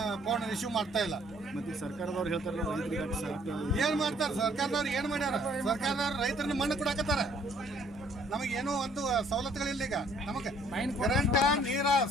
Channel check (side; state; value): both; normal; correlation 0.61